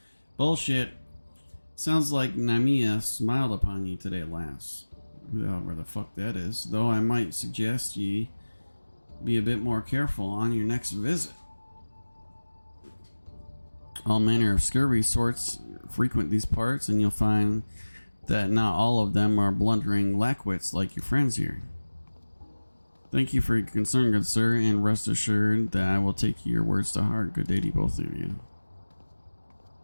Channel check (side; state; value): both; inverted; correlation -1.00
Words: Bullshit. Sounds like Namiya smiled upon you today, lass. Where the fuck that is. Though I might suggest ye be a bit more careful on your next visit. All manner of scurvy sorts frequent these parts, and you'll find that not all of them are blundering lackwits like your friends here. Thank you for your concern, good sir, and rest assured that I will take your words to heart. Good day to both of you.